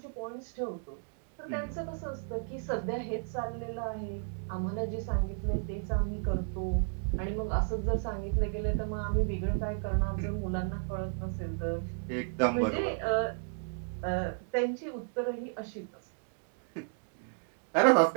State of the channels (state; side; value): silent; left; 56 dB below the other